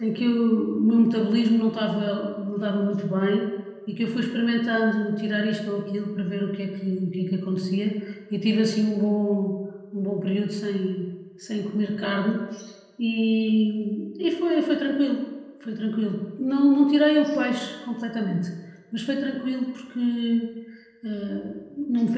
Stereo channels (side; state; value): both; identical; correlation 1.00